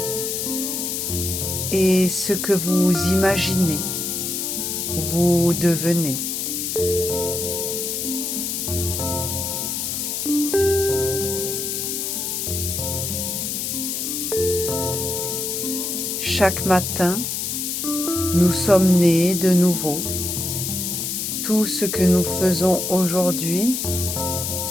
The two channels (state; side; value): noise; left; hiss, 2 dB below the sound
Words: Et ce que vous imaginez, vous devenez. Chaque matin, nous sommes nés de nouveau. Tout ce que nous faisons aujourd'hui